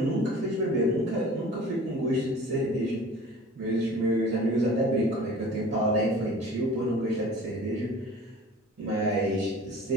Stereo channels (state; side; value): normal; both; correlation 0.44